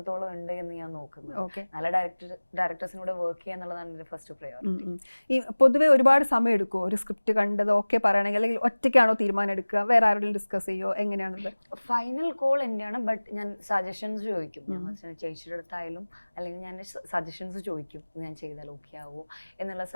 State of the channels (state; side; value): inverted; both; correlation -1.00